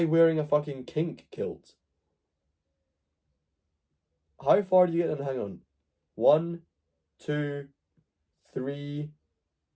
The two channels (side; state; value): both; identical; correlation 1.00